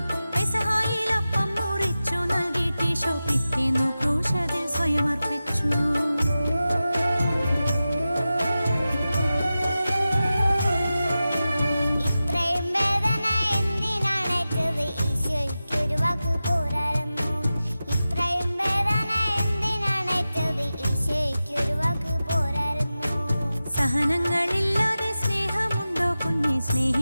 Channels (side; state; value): both; inverted; correlation -0.94